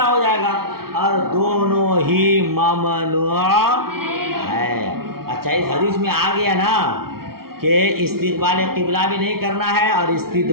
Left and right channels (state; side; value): late; left; 0.94 ms